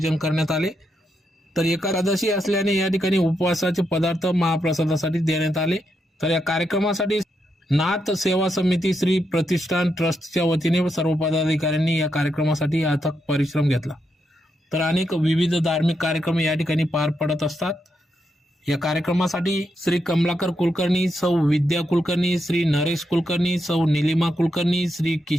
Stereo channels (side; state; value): both; normal; correlation 0.82